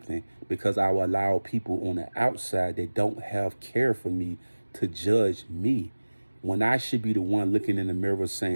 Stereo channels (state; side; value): inverted; both; correlation -1.00